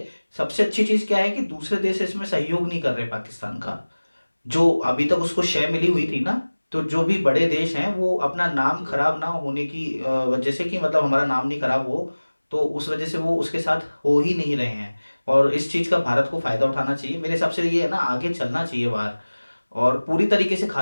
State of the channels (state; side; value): inverted; both; correlation -1.00